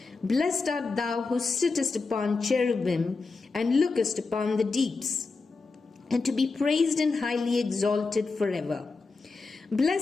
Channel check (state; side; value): quieter; right; 4.1 dB